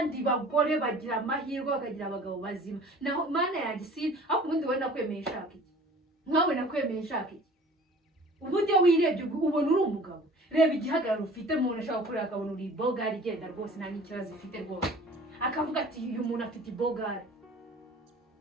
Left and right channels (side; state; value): both; normal; correlation 0.46